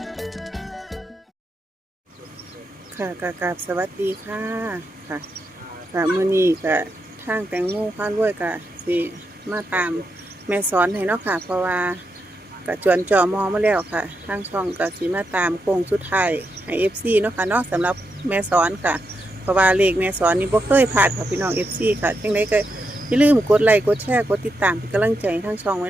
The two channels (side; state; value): both; normal; correlation 0.84